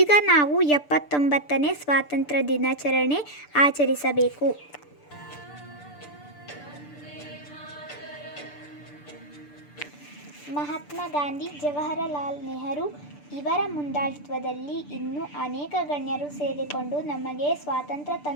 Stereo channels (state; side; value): late; right; 6.8 ms